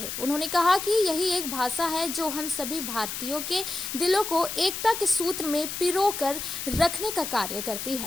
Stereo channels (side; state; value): left; noise; hiss, 6 dB below the sound